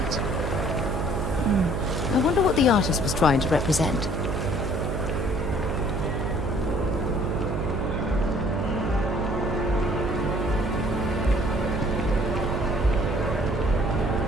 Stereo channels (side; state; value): right; noise; hum, 2 dB below the sound